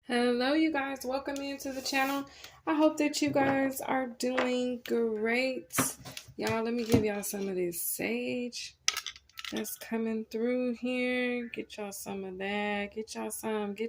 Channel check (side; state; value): both; identical; correlation 1.00